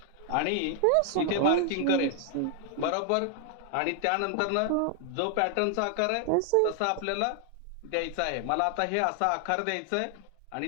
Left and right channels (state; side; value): different; both; correlation 0.00